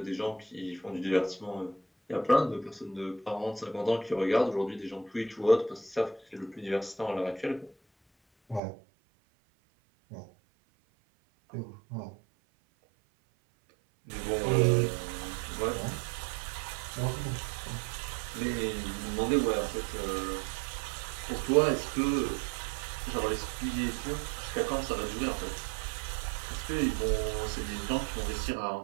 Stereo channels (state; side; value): drops out; left; at 8.6 s